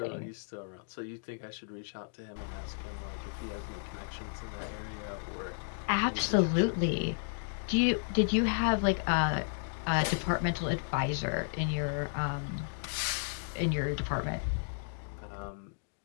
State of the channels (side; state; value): right; silent; digital silence